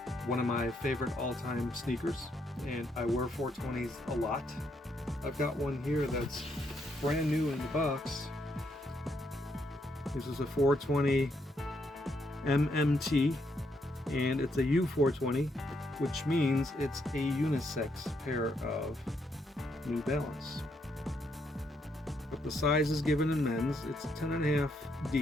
one of my favorite all-time sneakers, and I wear 420s a lot. I've got one here that's brand new in the box. This is a 420 MMT, and it's a U420, which means it's a unisex pair of New Balance. But the size is given in men's. It's 10.5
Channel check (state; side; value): normal; both; correlation 0.76